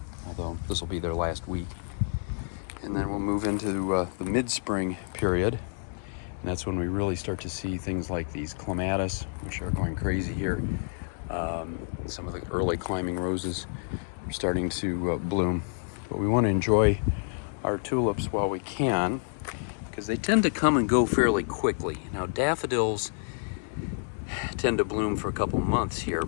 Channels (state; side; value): silent; right; 59 dB below the other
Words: although this will be their last week. And then we'll move into the mid-spring period, and that's when we really start to see things like these clematis, which are going crazy here. Some of the early climbing roses are starting to bloom. But we want to enjoy our tulips while we can, because they tend to come and go fairly quickly. Now daffodils tend to bloom for a couple months here,